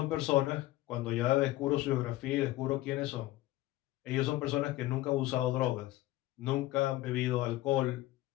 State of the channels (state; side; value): quieter; right; 16.9 dB